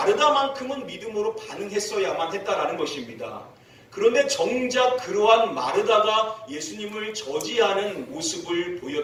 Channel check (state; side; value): identical; both; correlation 1.00